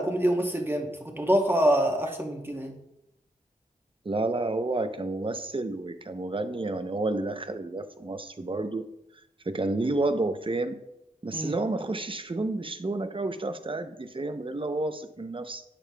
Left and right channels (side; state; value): both; normal; correlation 0.77